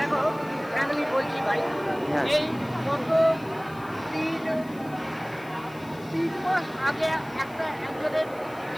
ফ্যামিলি বলছি ভাই, এই গত 3 মাস আগে একজনের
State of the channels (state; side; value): noise; left; hiss, 24 dB below the sound